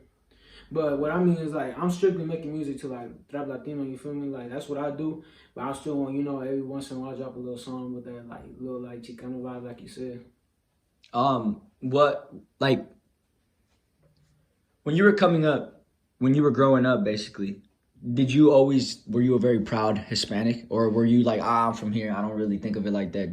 But what I mean is like I'm strictly making music to like rap Latino, you feel me? Like that's what I do. But I still want, you know, every once in a while I drop a little song with that like little like Chicano vibe, like you said. What like when you were coming up, when you were growing up, basically, were you a very proud Hispanic, or were you like, I'm from here, I don't really think of it like that?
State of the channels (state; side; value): identical; both; correlation 1.00